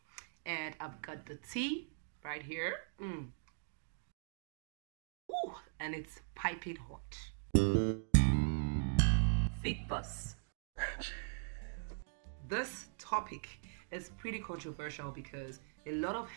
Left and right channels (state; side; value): silent; left; digital silence